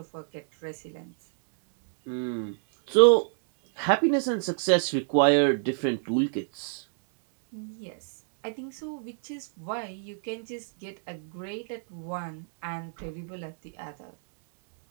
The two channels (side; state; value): left; silent; digital silence